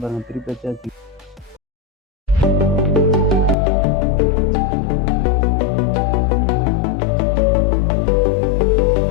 பாருங்கள், திருப்பி வச்சாச்சு.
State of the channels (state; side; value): drops out; right; at 3.6 s